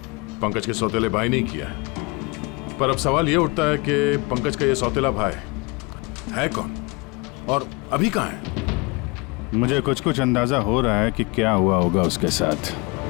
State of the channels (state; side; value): quieter; right; 27.1 dB